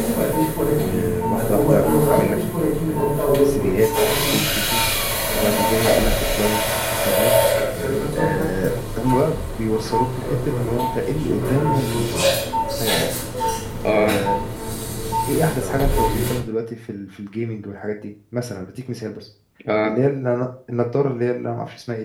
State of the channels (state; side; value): identical; both; correlation 1.00